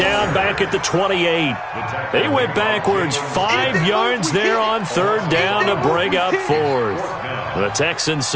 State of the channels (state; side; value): identical; both; correlation 1.00